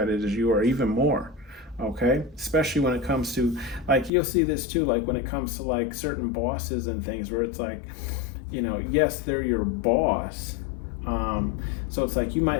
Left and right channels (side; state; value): right; drops out; at 4.1 s